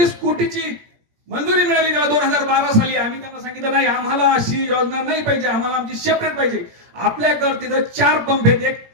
कोटीची मंजुरी मिळाली त्याला 2012 साली. आम्ही त्यांना सांगितलं नाही, आम्हाला अशी योजना नाही पाहिजे, आम्हाला आमची सेपरेट पाहिजे. आपल्याकडे तिथं 4 पंप आहेत, एक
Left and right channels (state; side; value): late; left; 17 ms